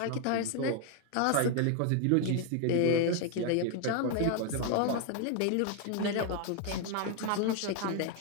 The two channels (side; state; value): both; different; correlation 0.00